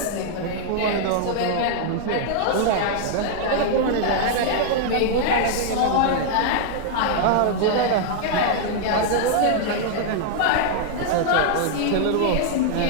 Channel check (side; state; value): both; different; correlation -0.01